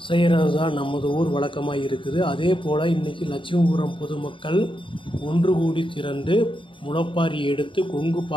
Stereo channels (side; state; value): right; late; 0.25 ms